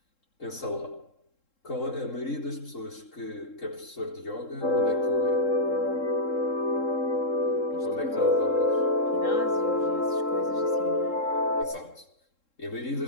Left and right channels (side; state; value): right; late; 3.7 ms